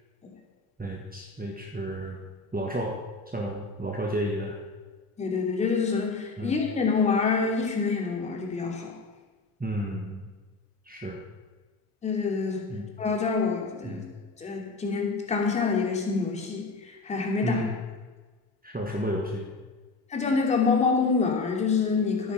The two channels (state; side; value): quieter; right; 3.8 dB